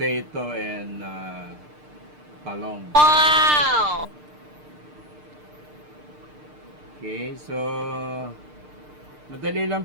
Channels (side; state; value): left; late; 6.6 ms